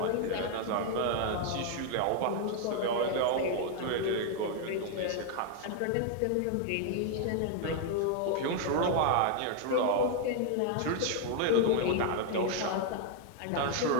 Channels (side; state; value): both; different; correlation 0.00